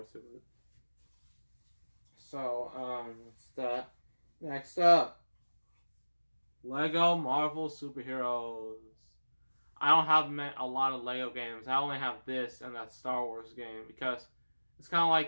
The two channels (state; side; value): inverted; both; correlation -1.00